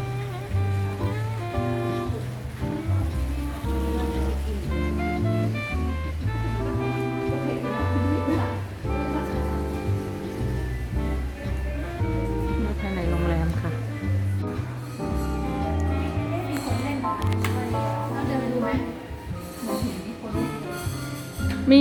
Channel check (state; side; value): identical; both; correlation 1.00